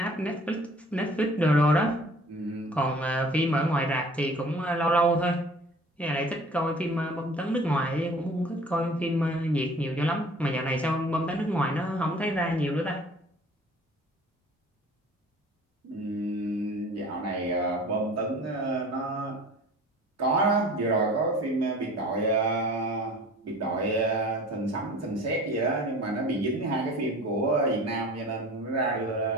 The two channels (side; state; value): both; normal; correlation 0.46